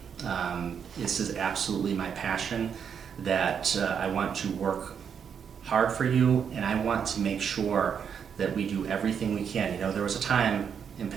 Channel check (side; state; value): left; quieter; 7.4 dB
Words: This is absolutely my passion, that I want to work hard for you, and I want to make sure that we do everything we can. There was a time in